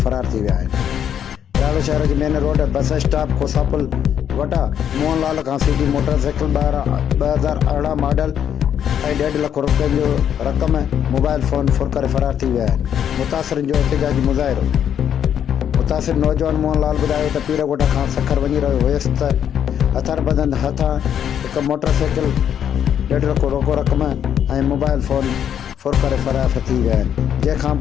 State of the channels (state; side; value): quieter; right; 9.1 dB